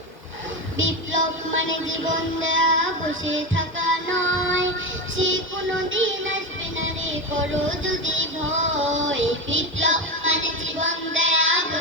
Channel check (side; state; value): both; normal; correlation 0.18